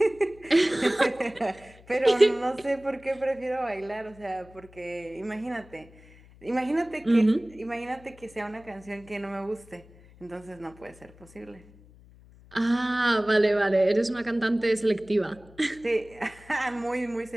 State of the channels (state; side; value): noise; left; hum, 24 dB below the sound